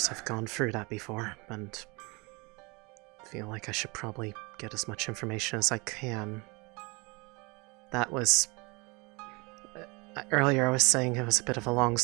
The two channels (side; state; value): left; quieter; 27.5 dB